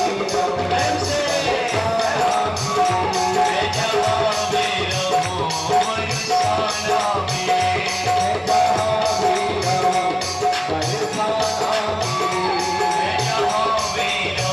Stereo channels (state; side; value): identical; both; correlation 1.00